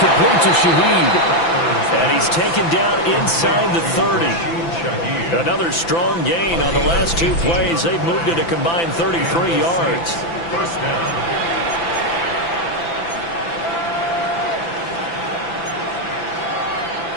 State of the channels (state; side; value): late; right; 5.9 ms